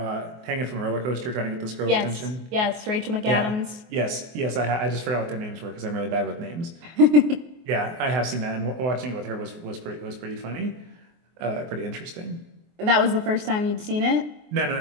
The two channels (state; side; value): late; left; 24 ms